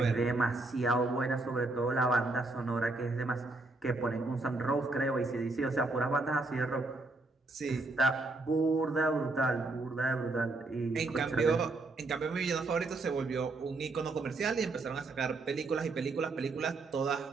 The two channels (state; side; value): quieter; left; 3.3 dB